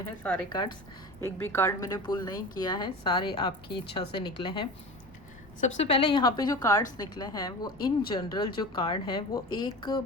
हैं सारे कार्ड्स। एक भी कार्ड मैंने पुल नहीं किया है, सारे आपकी इच्छा से निकले हैं। सबसे पहले यहाँ पे जो कार्ड्स निकले हैं वो इन जनरल जो कार्ड है वो एक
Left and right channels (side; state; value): left; noise; rumble, 24 dB below the sound